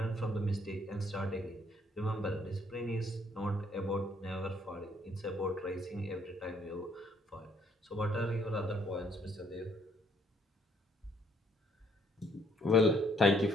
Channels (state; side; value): normal; both; correlation 0.66